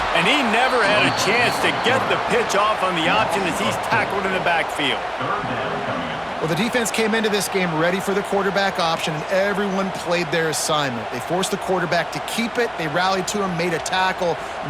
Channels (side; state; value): both; identical; correlation 1.00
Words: And he never had a chance to get the pitch off on the option as he's tackled in the backfield. Well, the defense came into this game ready for the quarterback option, and everyone played their assignment. They forced the quarterback to keep it. They rallied to him, made a tackle.